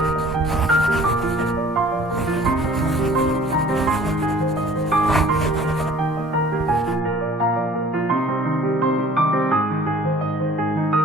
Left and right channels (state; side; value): normal; both; correlation 0.51